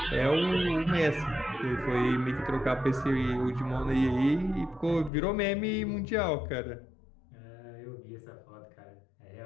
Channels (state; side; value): drops out; right; at 5.1 s